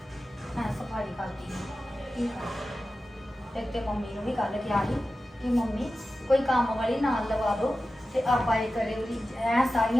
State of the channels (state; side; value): normal; both; correlation 0.94